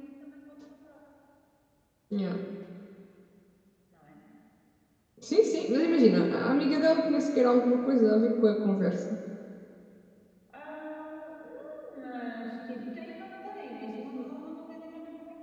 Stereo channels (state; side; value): identical; both; correlation 1.00